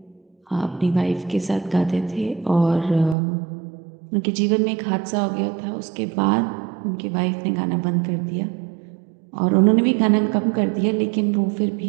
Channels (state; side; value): drops out; left; at 3.2 s